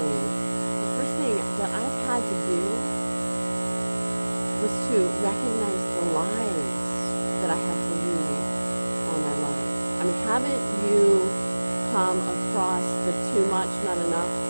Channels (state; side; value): inverted; both; correlation -1.00